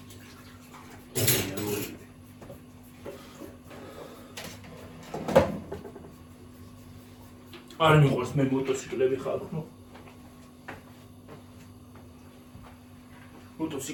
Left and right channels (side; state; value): both; identical; correlation 1.00